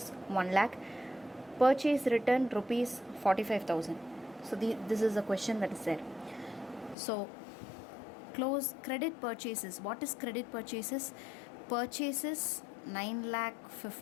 1 lakh, purchase return rupees 45,000. So this is the question that is there. So close credit purchases. What is credit purchases? Purchases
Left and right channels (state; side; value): drops out; right; at 7.0 s